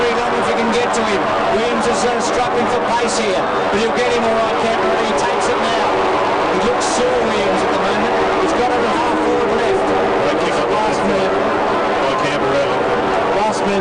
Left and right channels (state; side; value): identical; both; correlation 1.00